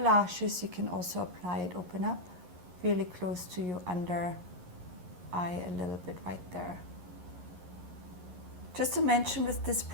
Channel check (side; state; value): left; late; 11 ms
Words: you can also apply it, open up really close to your under eye a little bit right there. Just to mention, with this